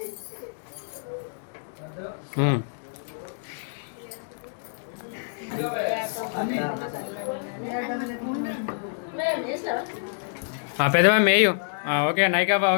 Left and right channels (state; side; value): silent; right; digital silence